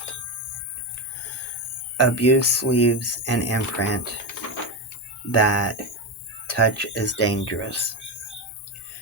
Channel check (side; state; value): both; normal; correlation 0.14